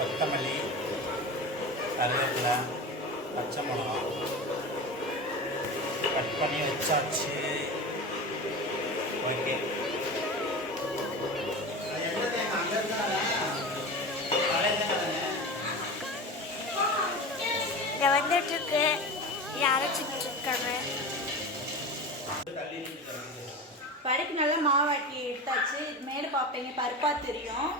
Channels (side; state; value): both; normal; correlation 0.28